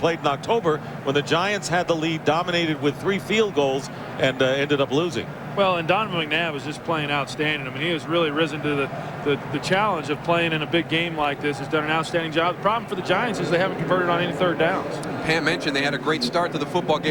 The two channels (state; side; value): identical; both; correlation 1.00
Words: in October when the Giants had the lead, dominated with 3 field goals, and ended up losing. Well, and Donovan McNabb is just playing outstanding. I mean, he has really risen to the challenge of playing in a big game like this. He's done an outstanding job. The problem for the Giants is they haven't converted on any third downs. Pam mentioned they had a great start to the football